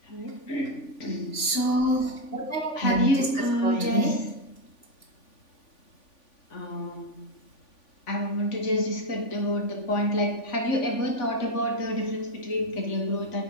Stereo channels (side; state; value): right; late; 3.5 ms